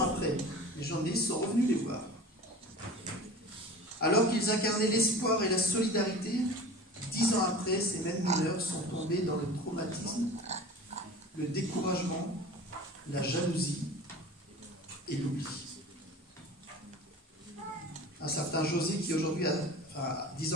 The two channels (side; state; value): both; normal; correlation 0.38